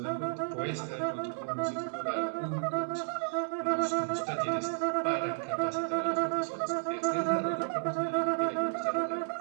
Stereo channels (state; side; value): silent; left; 56 dB below the other